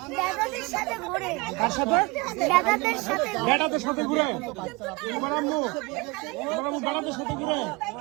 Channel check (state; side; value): quieter; left; 25.8 dB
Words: দাদাদের সাথে ঘোরে। কার সাথে? দাদাদের সাথে ঘোরে। বেটাদের সাথে ঘুরে? তোমার আম্মু বেটাদের সাথে ঘুরে?